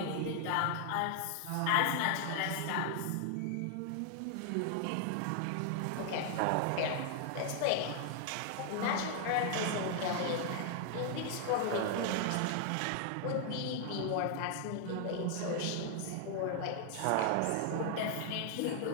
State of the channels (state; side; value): different; both; correlation 0.00